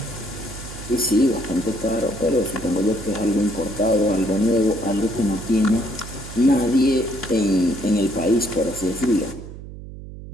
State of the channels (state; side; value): noise; right; hum, 13 dB below the sound